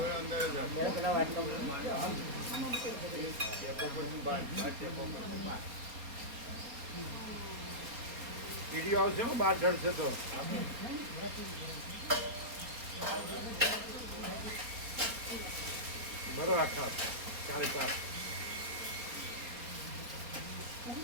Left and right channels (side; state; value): left; late; 4.3 ms